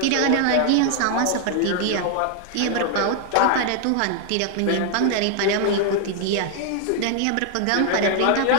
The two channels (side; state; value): both; different; correlation 0.00